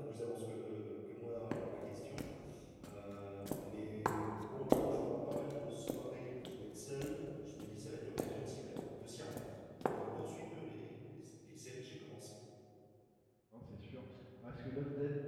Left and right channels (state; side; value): identical; both; correlation 1.00